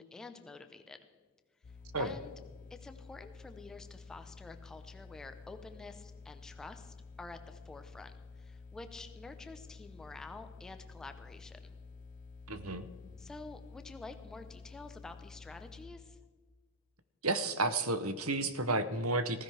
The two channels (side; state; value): both; normal; correlation -0.06